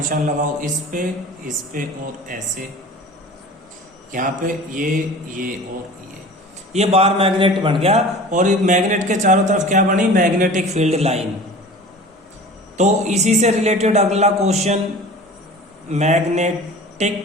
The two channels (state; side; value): normal; both; correlation 0.40